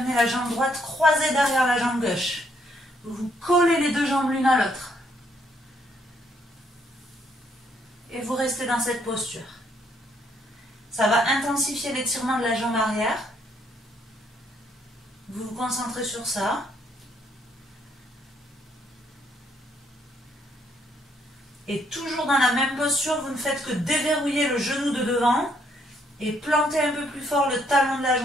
la jambe droite croisée derrière la jambe gauche. Vous collez les deux jambes l'une à l'autre. Et vous restez dans cette posture. Ça va intensifier l'étirement de la jambe arrière. Vous vous concentrez sur ça. Et toujours dans la même posture, vous ne faites que déverrouiller le genou de devant et planter un peu plus fort le talon de la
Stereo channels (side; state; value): both; normal; correlation 0.70